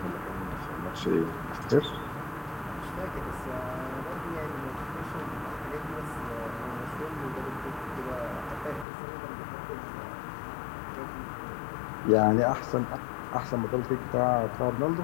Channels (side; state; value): right; drops out; at 8.8 s